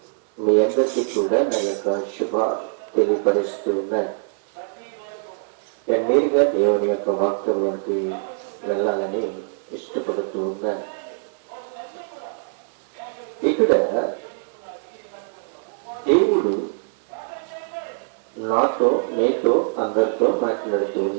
మీ అందరికీ కూడా నా యొక్క శుభ తెలియపరుస్తూ ఉన్నాను. నేరుగా దేవుని యొక్క వాక్యంలోకి వెళ్ళాలని ఇష్టపడుతూ ఉన్నాను. ఇక్కడ దేవుడు నాతో మీతో అందరితో మాట్లాడుతూ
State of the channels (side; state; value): left; silent; 59 dB below the other